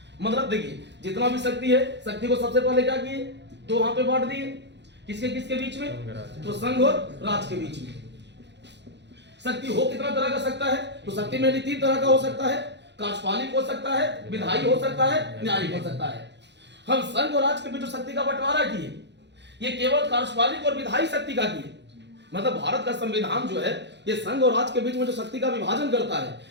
मतलब देखिए जितना भी शक्ति है, शक्ति को सबसे पहले क्या किए? दो हाथ में बांट दिए। किसके किसके बीच में? तो संघ और राज्य के बीच में। शक्ति हो कितना तरह का सकता है? तो शक्ति में तीन तरह का हो सकता है, कार्यपालिक हो सकता है, विधायी हो सकता है, न्यायिक हो सकता है। हम संघ और राज्य के बीच जो शक्ति का बंटवारा किए ये केवल कार्यपालिक और विधायी शक्ति का किए। मतलब भारत का संविधान जो है ये संघ और राज्य के बीच में जो शक्ति का विभाजन करता है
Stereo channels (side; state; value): left; late; 0.51 ms